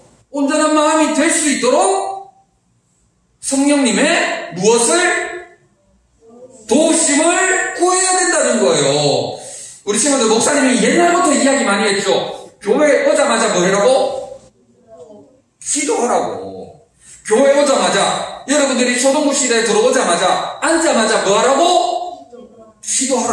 있도록 성령님의 무엇을? 도우심을 구해야 된다는 거예요. 우리 친구들 목사님이 옛날부터 이야기 많이 했죠. 교회 오자마자 뭐 하라고? 기도하라고. 교회 오자마자 여러분들이 초등부실에 들어오자마자 앉자마자 뭐 하라고?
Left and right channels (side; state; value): both; identical; correlation 1.00